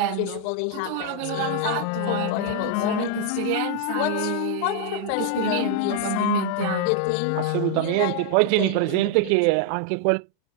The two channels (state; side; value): different; both; correlation 0.00